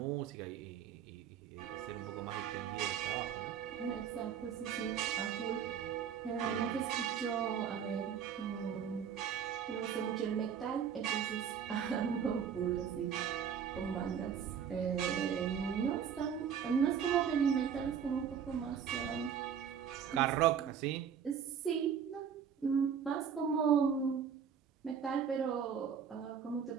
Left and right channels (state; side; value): quieter; left; 7.8 dB